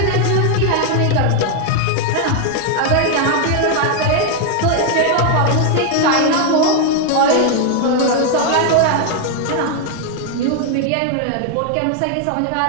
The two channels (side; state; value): both; different; correlation 0.01